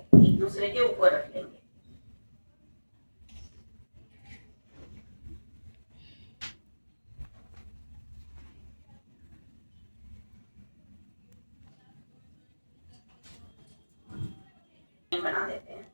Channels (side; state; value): both; inverted; correlation -1.00